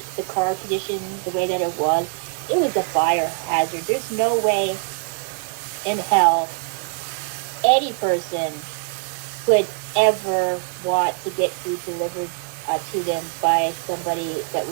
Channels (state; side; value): quieter; left; 38.4 dB